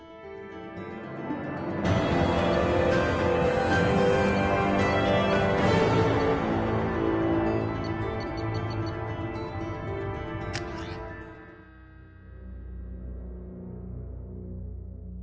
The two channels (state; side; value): identical; both; correlation 1.00